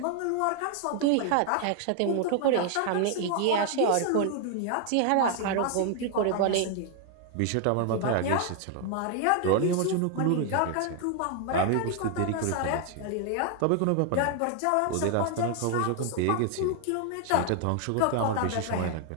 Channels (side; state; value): both; different; correlation 0.00